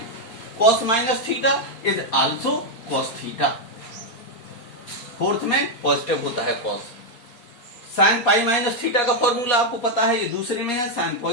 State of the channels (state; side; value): late; right; 4.2 ms